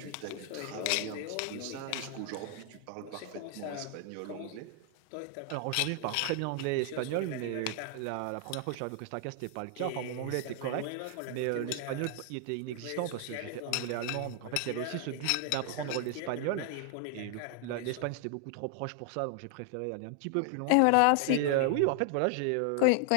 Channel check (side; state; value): both; different; correlation 0.00